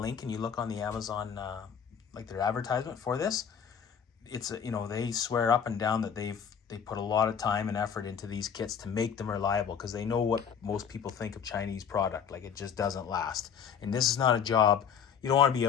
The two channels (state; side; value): quieter; right; 7.5 dB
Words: link and you look on the Amazon, like their advertisement for this, it's, you know, they swear up and down that they put a lot of time and effort into these kits to make them reliable, because they know what most people think of Chinese product. Like, it just doesn't last. And this is not a job. You don't want to be